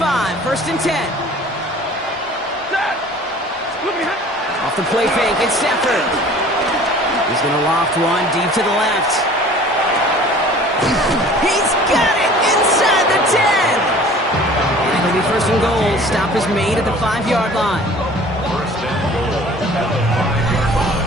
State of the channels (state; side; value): normal; both; correlation 0.47